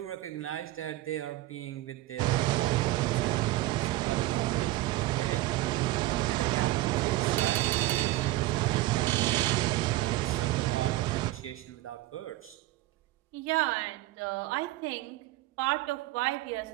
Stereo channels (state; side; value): quieter; left; 16.9 dB